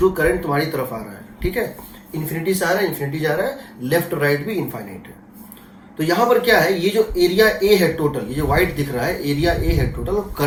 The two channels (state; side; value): identical; both; correlation 1.00